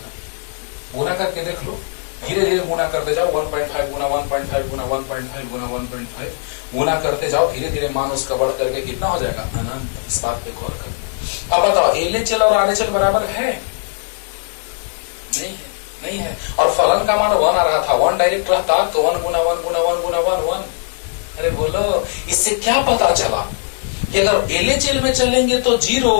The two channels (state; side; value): silent; right; digital silence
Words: गुना करके देख लो, धीरे धीरे गुना करते जाओ, 1.5 गुना 1.5 गुना 1.5 गुना 1.5 गुना करते जाओ, धीरे धीरे मान उसका बढ़ करके कितना हो जाएगा, अनंत। इस बात पे गौर करो। अब बताओ LHL और RHL बराबर है? नहीं है। और फलन का मान 1 आ रहा था, 1 डायरेक्ट रहता तो 1 गुना 1 गुना 1 गुना 1 1। अरे बोलो, इससे क्या पता चला कि अगर LHL में चलेंगे तो 0,